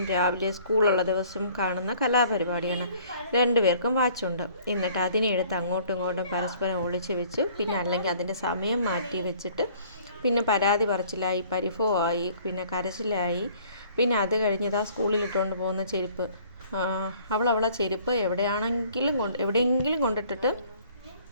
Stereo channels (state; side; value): inverted; both; correlation -0.56